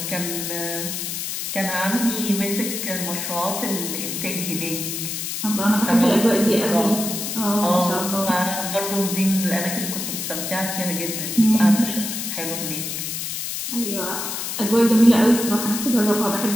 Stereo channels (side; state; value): left; noise; hiss, 4 dB below the sound